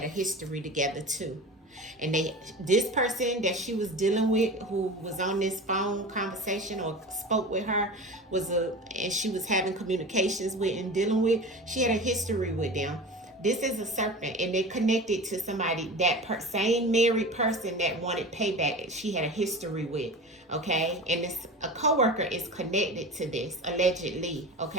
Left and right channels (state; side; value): normal; both; correlation 0.32